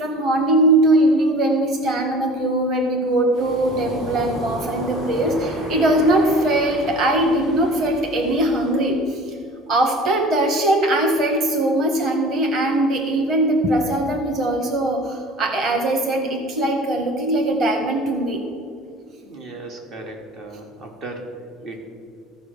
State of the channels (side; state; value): both; normal; correlation 0.43